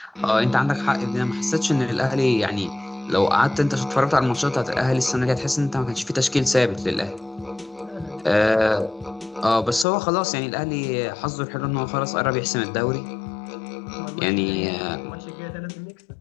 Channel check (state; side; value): drops out; right; at 9.9 s